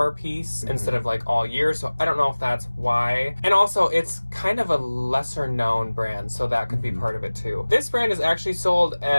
piece instead of like all year, so I don't know if that's why. And also, it's kind of a lesser known brand, so that could be part of it too. This brand is actually sold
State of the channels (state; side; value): inverted; both; correlation -1.00